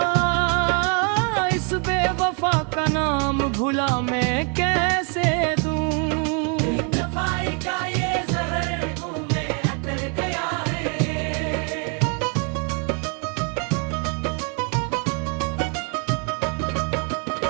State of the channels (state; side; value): quieter; left; 37.7 dB